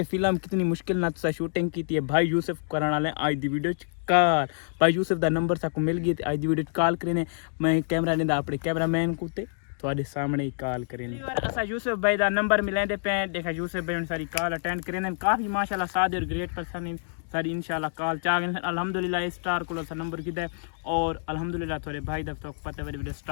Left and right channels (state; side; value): silent; right; digital silence